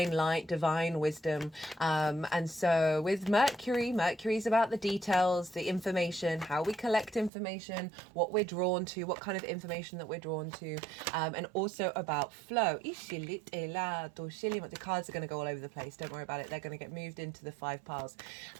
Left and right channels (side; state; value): left; drops out; at 7.3 s